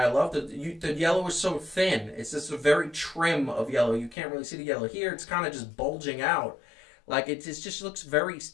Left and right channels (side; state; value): right; drops out; at 4.2 s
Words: loved the yellow is so thin. It's just a very trim of yellow. You can't really see the yellow here. It's kind of just bulging out, it just looks very